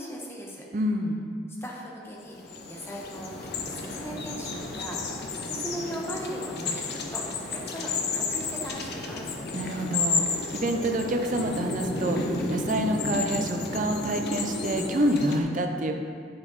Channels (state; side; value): normal; both; correlation 0.43